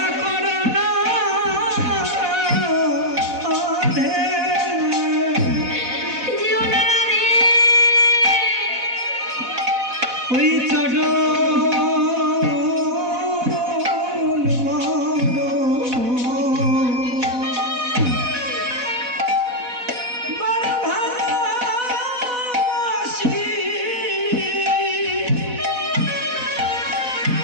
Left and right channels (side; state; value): left; late; 4.0 ms